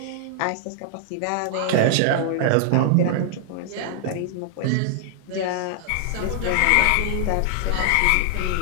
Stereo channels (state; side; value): different; both; correlation -0.01